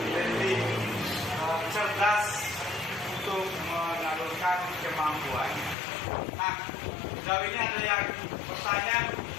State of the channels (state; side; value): drops out; right; at 5.8 s